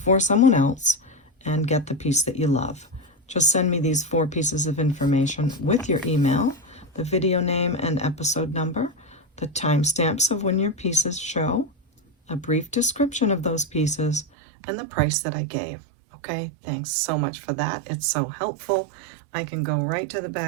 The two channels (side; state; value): left; drops out; at 14.2 s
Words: someone else and get the piece that you love. Just send me these 4 pieces of information with your email, the video name and episode number, the timestamps of when your pieces show, a brief description of those pieces, and the price that I gave. Okay, thanks so much for that. It's so helpful. I can go right to the